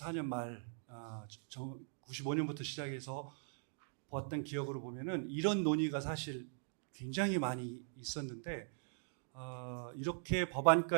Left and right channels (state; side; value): silent; left; digital silence